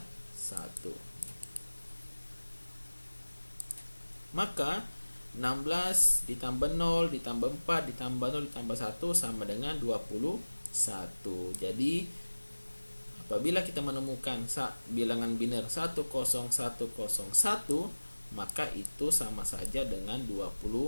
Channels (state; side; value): inverted; both; correlation -1.00